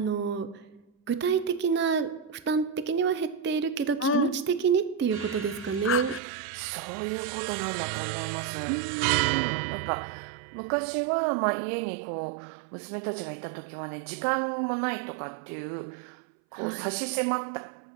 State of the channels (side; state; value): left; drops out; at 6.2 s